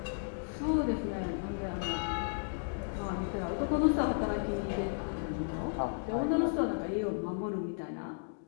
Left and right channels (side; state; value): right; silent; digital silence